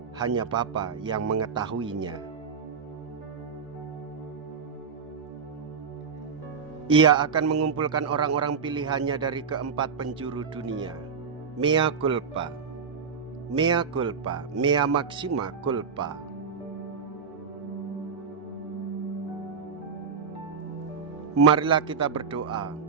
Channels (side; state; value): left; quieter; 5.9 dB